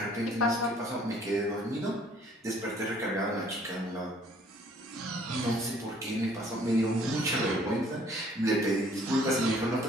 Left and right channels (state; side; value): normal; both; correlation 0.59